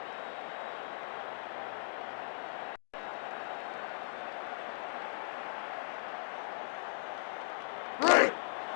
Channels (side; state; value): right; silent; digital silence